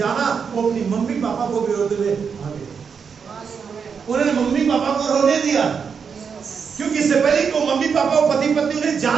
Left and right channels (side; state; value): left; quieter; 6.3 dB